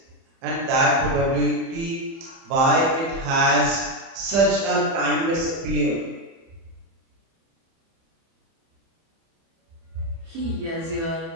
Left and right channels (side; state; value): left; late; 30 ms